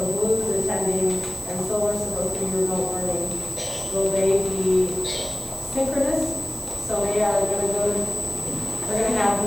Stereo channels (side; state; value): right; noise; hiss, 13 dB below the sound